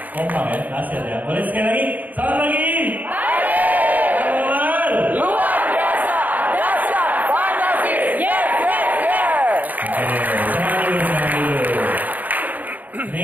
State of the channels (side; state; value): left; late; 0.081 ms